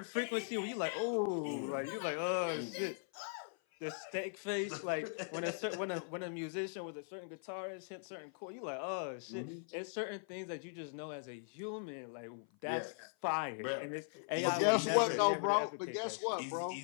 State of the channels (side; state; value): right; silent; 51 dB below the other